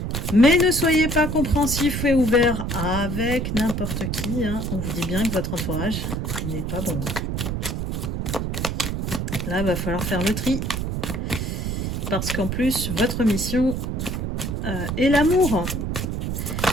Mais ne soyez pas compréhensif et ouvert avec n'importe qui. Hein. On vous dit bien que votre entourage n'est pas bon. Là, il va falloir faire le tri. Parce qu'en plus, votre mission est l'amour.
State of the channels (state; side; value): noise; right; rumble, 2 dB below the sound